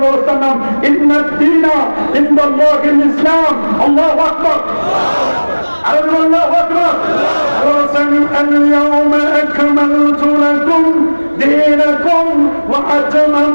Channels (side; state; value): both; inverted; correlation -1.00